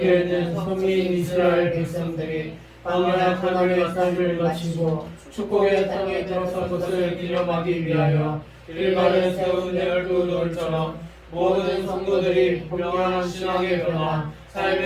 서민 이스라엘 백성들이 광야 가나안의 삶을 마치고 축복의 땅에 들어선 것을 기념하기 위하여 일간에 세운 열두 돌처럼 모든 성도들이 분명한 신앙의 변화,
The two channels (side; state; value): both; identical; correlation 1.00